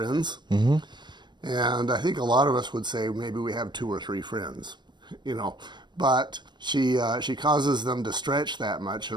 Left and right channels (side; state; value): left; late; 0.22 ms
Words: And I think a lot of us would say maybe we have 2 or 3 friends, you know, but she causes them to stretch that much